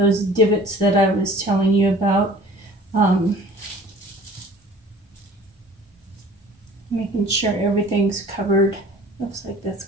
divots that I was telling you about. Making sure everything's covered. Looks like that's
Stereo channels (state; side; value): normal; both; correlation 0.48